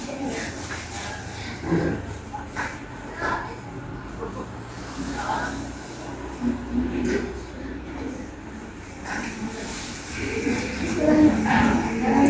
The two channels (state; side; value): identical; both; correlation 1.00